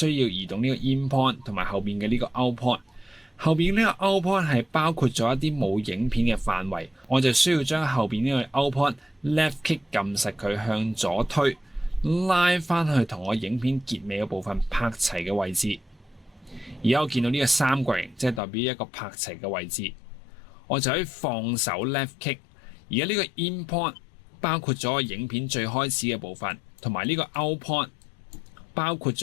要移動呢個 in point 同埋後面嘅呢個 out point。後面呢個 out point 係包括咗一啲冇影片嘅範圍，我就需要將後面呢個 out point left click 撳實佢向左推，拉翻去同我影片結尾嘅部分拍齊嘅位置。而家我見到呢個三角形，即係代表一個拍齊嘅位置，我就可以放手 left click。而家呢個 in point 包括咗我影片最開始嘅部分，同埋呢個 out point 包括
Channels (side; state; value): right; drops out; at 18.4 s